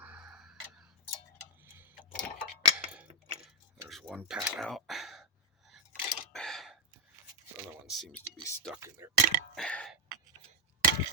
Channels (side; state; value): both; normal; correlation -0.03